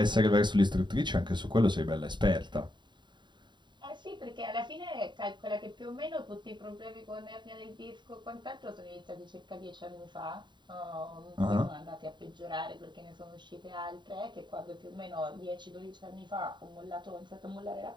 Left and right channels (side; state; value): left; late; 0.22 ms